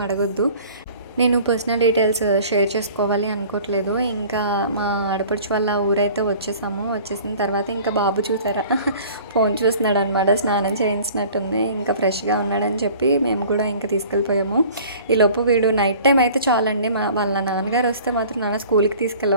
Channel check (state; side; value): inverted; both; correlation -0.47